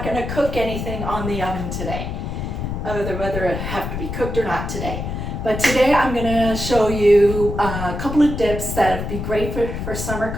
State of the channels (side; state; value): left; noise; rumble, 5 dB below the sound